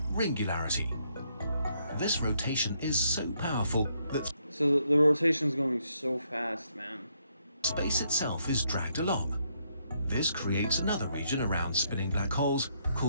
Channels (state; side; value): inverted; both; correlation -0.74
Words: ringularity. This rotation is so powerful that So the rotation's going so fast, man. space itself is dragged along. This creates another region around spinning black holes